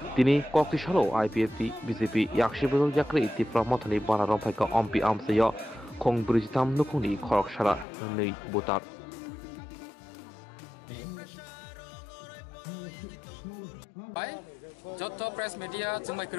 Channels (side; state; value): right; drops out; at 7.9 s